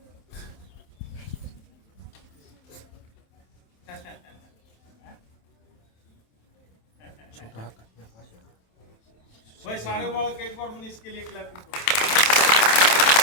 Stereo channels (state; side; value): late; right; 27 ms